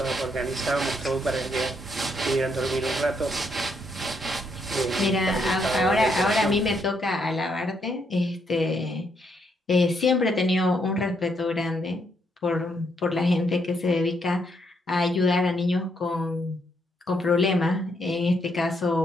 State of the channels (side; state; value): both; normal; correlation 0.75